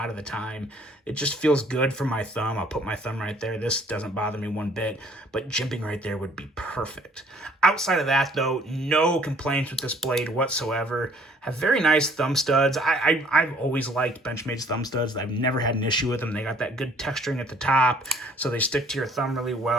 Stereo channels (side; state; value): both; normal; correlation 0.58